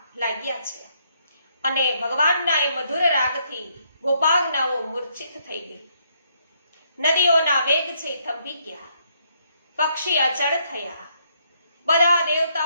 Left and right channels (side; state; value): both; inverted; correlation -0.72